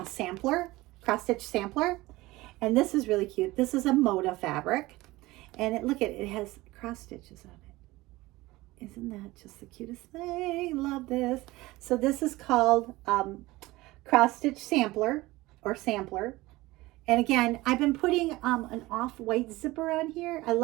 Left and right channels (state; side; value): quieter; left; 19.5 dB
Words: stitch sampler. And this is really cute. This is a Moda fabric. And it has cross stitches on it. Isn't that just the cutest thing? Love this. So this is called cross stitch sampler. And again, I've been putting an off-white zipper on here. I